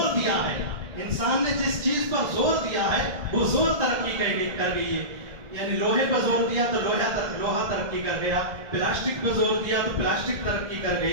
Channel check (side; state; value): left; late; 1.7 ms